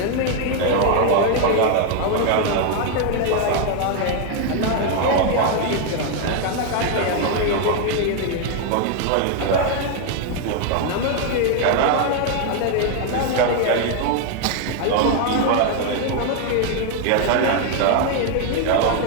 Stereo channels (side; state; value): both; different; correlation 0.00